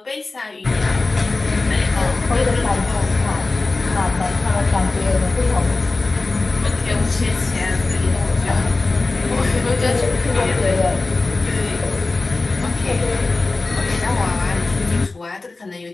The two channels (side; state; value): right; quieter; 3.4 dB